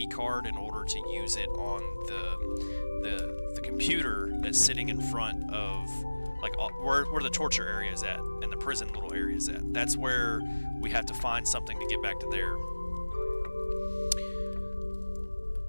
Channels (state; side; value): inverted; both; correlation -1.00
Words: card in order to use it on the computer that's sitting in front of, like, where the torture area is at and the prison little area is at. That's where we have to find something to get back to there.